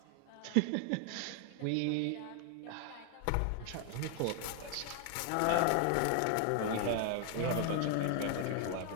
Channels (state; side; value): different; both; correlation 0.00